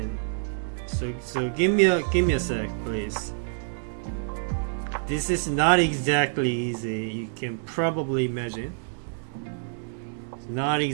So give me a sec, please. This is not exactly easy. You can probably imagine. It's not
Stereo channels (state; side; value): silent; left; 60 dB below the other